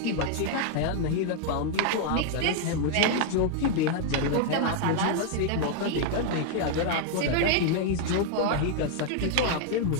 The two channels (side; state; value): both; different; correlation 0.00